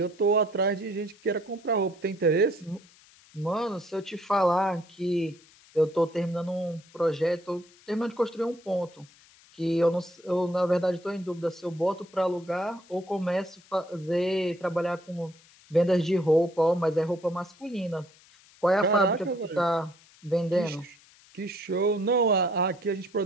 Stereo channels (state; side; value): noise; left; hiss, 27 dB below the sound